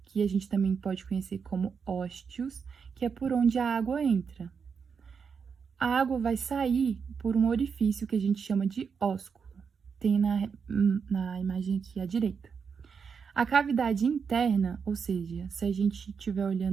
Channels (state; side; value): quieter; left; 6.1 dB